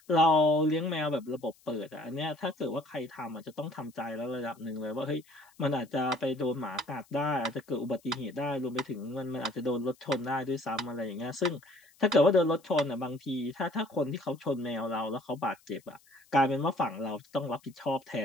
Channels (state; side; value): noise; left; hiss, 30 dB below the sound